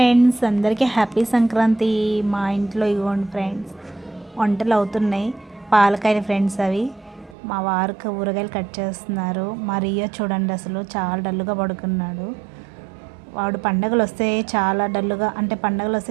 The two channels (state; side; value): drops out; left; at 7.4 s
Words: అందరికీ హ్యాపీ సంక్రాంతి. మా ఇంట్లో ఇవ్వండి ఫ్రెండ్స్, వంటలు అవుతున్నాయి. పాలకాయలు ఫ్రెండ్స్ అవి. మా వారికి ఊరగాయలు కట్ చేస్తున్నారు. మా రియో చూడండి, అసలు చాలా డల్లుగా పడుకున్నాడు. వాడు పండగలు వస్తే చాలా డల్లుగా, అంటే పండగలు